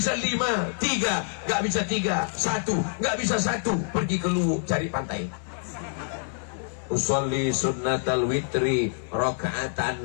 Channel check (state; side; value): silent; right; 61 dB below the other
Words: 5, 3. Nggak bisa 3, 1. Nggak bisa 1, pergi ke Luwu cari pantai. Usolli sunnatal witri